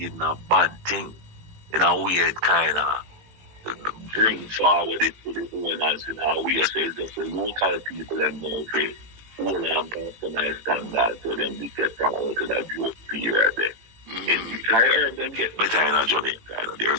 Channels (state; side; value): late; left; 18 ms